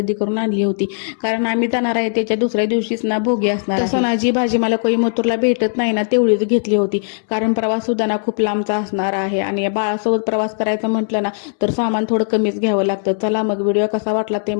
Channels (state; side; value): silent; right; 65 dB below the other